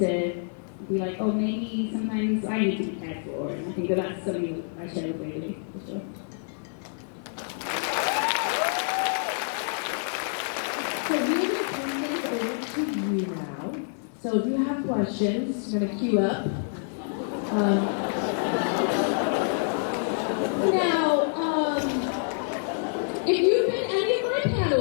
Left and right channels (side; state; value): right; silent; 60 dB below the other